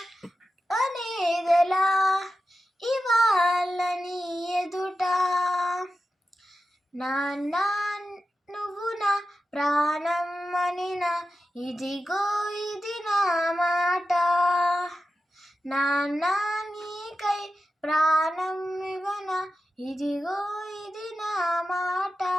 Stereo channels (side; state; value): both; normal; correlation 0.92